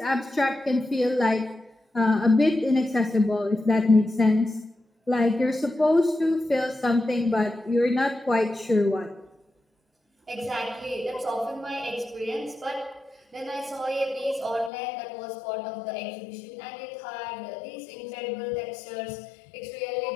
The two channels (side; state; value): right; drops out; at 14.7 s